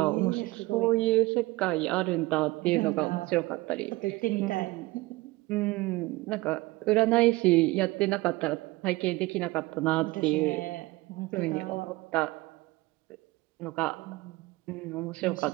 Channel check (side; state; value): left; quieter; 21.0 dB